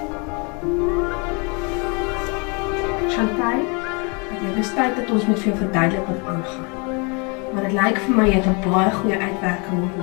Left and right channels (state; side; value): quieter; right; 32.6 dB